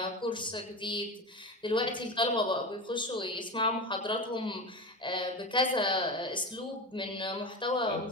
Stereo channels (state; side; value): normal; both; correlation 0.24